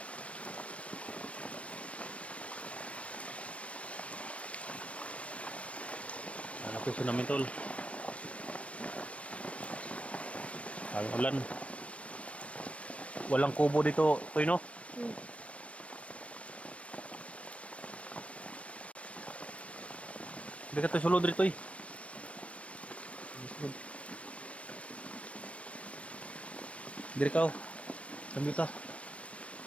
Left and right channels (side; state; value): right; late; 0.063 ms